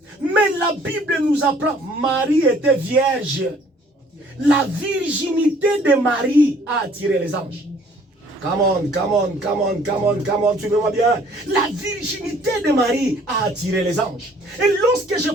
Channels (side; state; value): both; normal; correlation 0.58